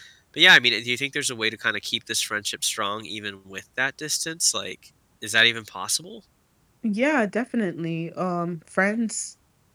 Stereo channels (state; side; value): identical; both; correlation 1.00